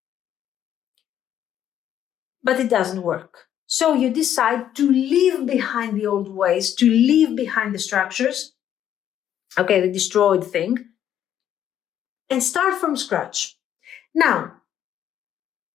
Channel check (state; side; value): quieter; right; 10.4 dB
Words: but it doesn't work. So you decide to leave behind the old ways, to leave behind the structures, okay, the destroyed thing, and start from scratch. Now,